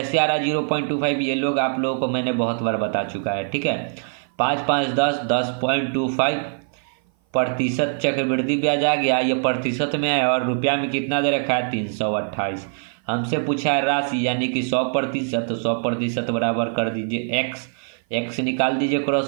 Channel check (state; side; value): silent; left; 56 dB below the other